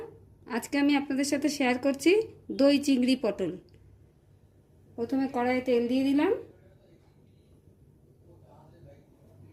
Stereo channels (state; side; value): identical; both; correlation 1.00